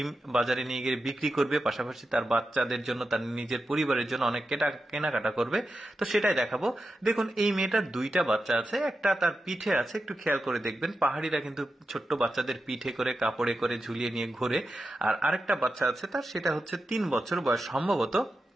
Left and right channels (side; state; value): both; normal; correlation 0.90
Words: বাজারে নিয়ে গিয়ে বিক্রি করবে, পাশাপাশি তার বাচ্চাদের জন্য, তার নিজের পরিবারের জন্য অনেক কেনাকাটা করবে। তো সেটাই দেখাবো। দেখুন, এই মেয়েটার দুইটা বাচ্চা আছে, একটা তার পিঠে আছে, একটু খেয়াল করে দেখবেন। পাহাড়িরা কিন্তু ছোট্ট বাচ্চাদের পিঠে করে কাপড়ে করে ঝুলিয়ে নিয়ে ঘোরে। আর আরেকটা বাচ্চা আছে তার, সেটা হচ্ছে 3 বছর বয়স সম্ভবত।